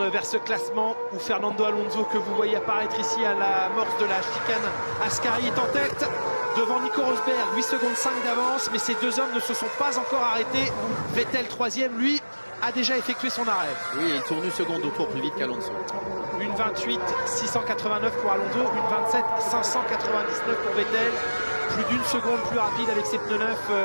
vers ce classement où Fernando Alonso, que vous voyez apparaître ici à l'amorce de la chicane Ascari, est en tête devant Nico Rosberg, 8 secondes 5 d'avance, mais ces deux hommes ne se sont pas encore arrêtés. Vettel 3e, lui, a déjà effectué son arrêt. Oui, il tourne une seconde au tour plus vite qu'Alonso. Une 28 689 pour Alonso, une 27 599 pour Vettel. Plus d'une seconde plus rapide avec ses pneus neufs,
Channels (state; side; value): inverted; both; correlation -1.00